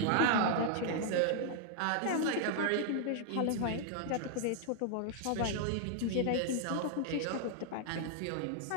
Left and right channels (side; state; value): both; different; correlation 0.00